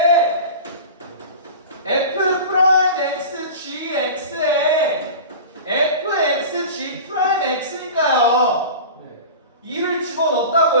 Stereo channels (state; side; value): inverted; both; correlation -0.34